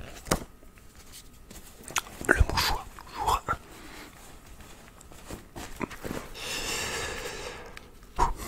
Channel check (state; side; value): identical; both; correlation 1.00